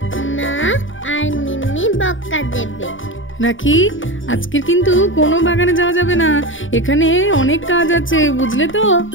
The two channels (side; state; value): right; late; 0.57 ms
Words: মা আর মিম্মি বক্কা দেবে। রাখি, আজকের কিন্তু কোনো বাগানে যাওয়া যাবে না, এখানে অনেক কাজ আছে, বুঝলে তো?